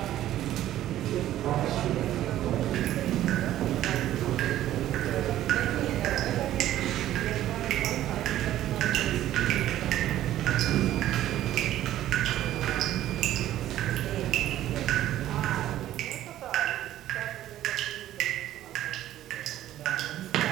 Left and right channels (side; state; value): left; quieter; 13.1 dB